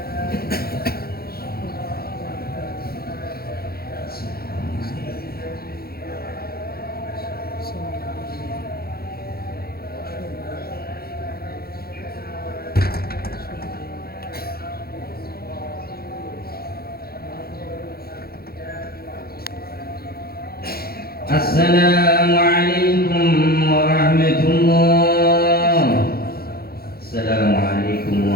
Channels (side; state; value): right; late; 0.44 ms